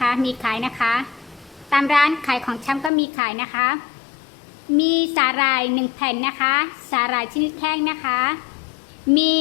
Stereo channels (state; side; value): drops out; right; at 2.9 s